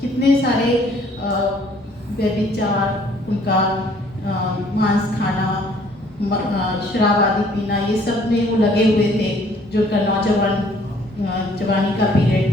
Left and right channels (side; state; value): both; normal; correlation 0.59